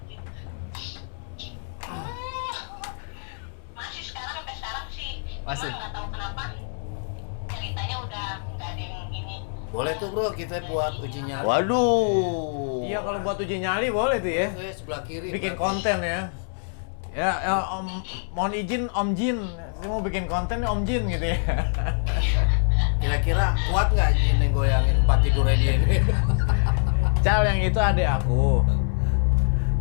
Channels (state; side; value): silent; right; 62 dB below the other